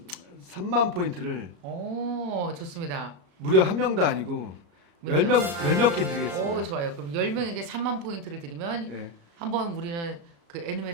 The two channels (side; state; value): left; late; 34 ms